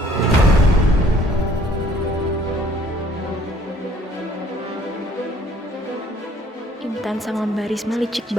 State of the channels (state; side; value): normal; both; correlation 0.58